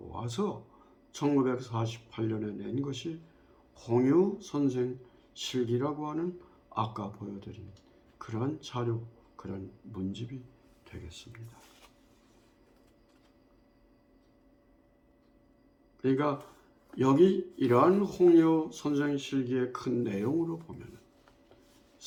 1948년에 낸 것이 홍유 선생 실기라고 하는 아까 보여드린 그러한 자료, 그런 문집이 되겠습니다. 그러니까 여기 이러한 홍유 선생 실기의 큰 내용으로 보면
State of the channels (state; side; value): identical; both; correlation 1.00